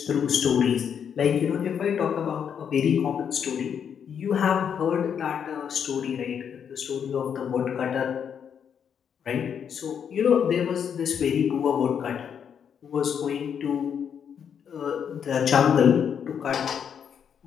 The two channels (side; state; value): right; quieter; 7.8 dB